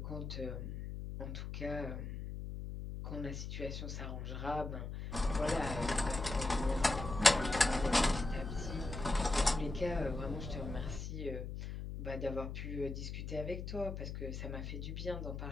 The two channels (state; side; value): noise; left; hum, 6 dB below the sound